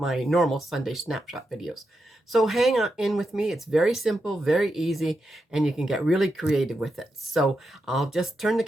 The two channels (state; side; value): normal; both; correlation 0.86